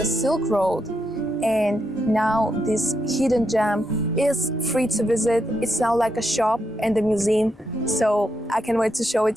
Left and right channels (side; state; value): both; normal; correlation 0.82